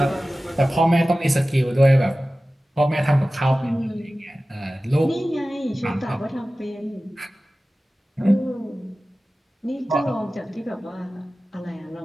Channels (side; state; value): both; normal; correlation 0.96